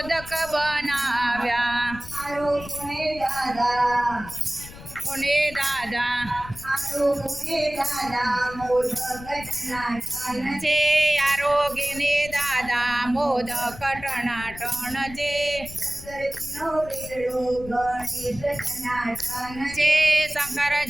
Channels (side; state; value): left; noise; rumble, 15 dB below the sound